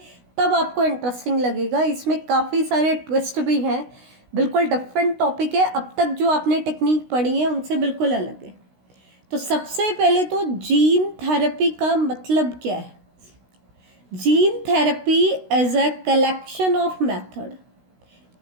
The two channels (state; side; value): late; left; 16 ms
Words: तब आपको इंटरेस्टिंग लगेगा। इसमें काफ़ी सारे ट्विस्ट भी हैं, बिल्कुल डिफरेंट टॉपिक है। अब तक जो आपने टेक्निक पढ़ी है उनसे बिल्कुल अलग है। तो सबसे पहले तो जीन थेरेपी का मतलब क्या है। Gene therapy as a collection of method,